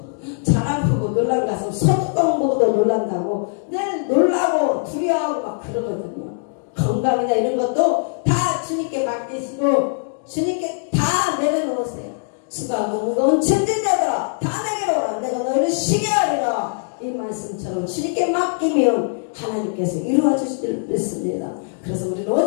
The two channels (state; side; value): silent; right; digital silence